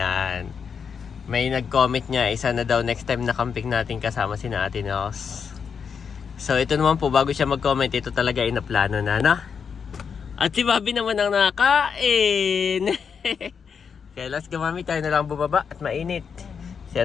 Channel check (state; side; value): quieter; right; 6.4 dB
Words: May nag-comment niya, isa na daw next time na camping natin kasama si Ate Nos. So ito naman po, bago siya mag-comment, ito talaga inaplano na, no? At si Bobby naman ang nakain. Kaya let's go, Mami, tayo na lang bumaba at mainit. Si